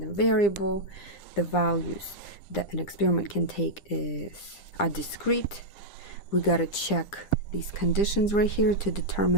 variable. The values that an experiment can take are discrete. We gotta check these conditions right here to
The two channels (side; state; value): right; late; 10 ms